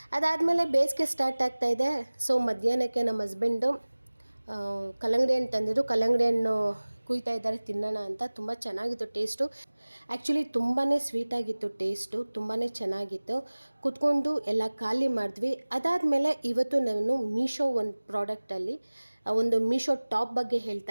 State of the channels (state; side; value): inverted; both; correlation -1.00